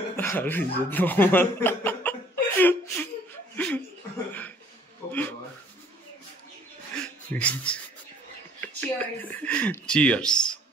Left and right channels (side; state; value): both; normal; correlation 0.57